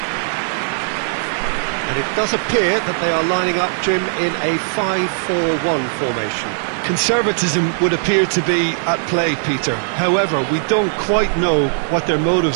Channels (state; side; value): silent; left; 56 dB below the other